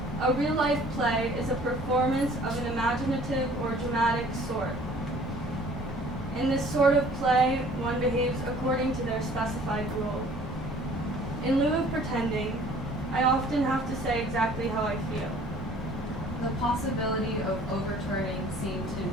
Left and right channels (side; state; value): both; normal; correlation 0.52